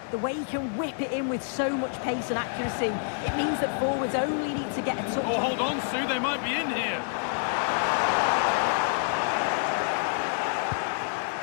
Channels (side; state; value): right; silent; digital silence